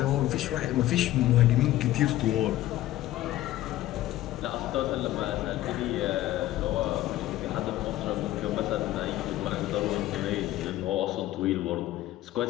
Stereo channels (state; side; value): quieter; right; 14.9 dB